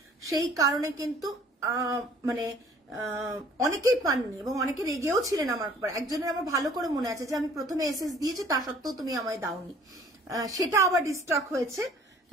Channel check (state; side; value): normal; both; correlation 0.54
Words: সেই কারণে কিন্তু মানে অনেকেই পাননি এবং অনেকে রেগেও ছিলেন আমার উপর। একজনের আমার ভালো করে মনে আছে যে আমি প্রথমে এসএস দিয়েছি তা সত্ত্বেও তুমি আমায় দাওনি, সেটা আবার ডিস্টক হয়েছে।